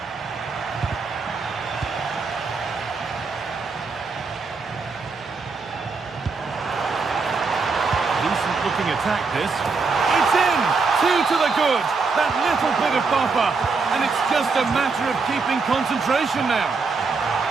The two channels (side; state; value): left; quieter; 4.5 dB